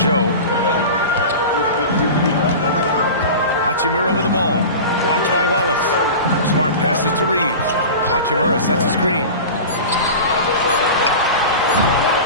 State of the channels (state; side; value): inverted; both; correlation -0.32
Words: Hachimura with the ball. Watched by Wallace. Smart passes to Reeves. Hachimura sets a screen.